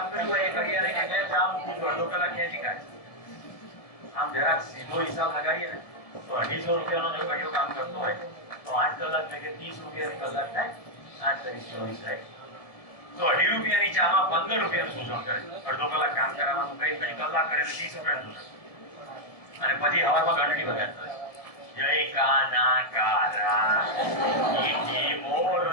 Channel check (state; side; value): late; right; 1.7 ms